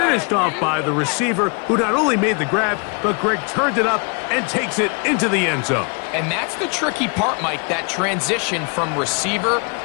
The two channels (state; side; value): quieter; right; 35.1 dB